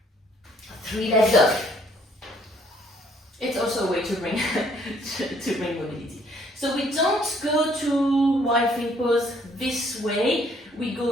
3-leg dog. It's also a way to bring to bring mobility. So we don't go to wide feet pose this way. We go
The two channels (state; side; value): normal; both; correlation 0.64